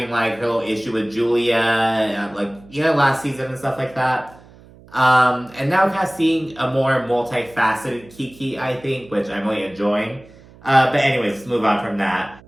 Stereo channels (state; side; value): noise; right; hum, 24 dB below the sound